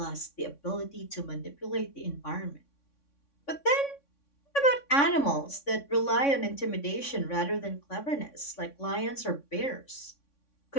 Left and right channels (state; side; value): late; right; 3.6 ms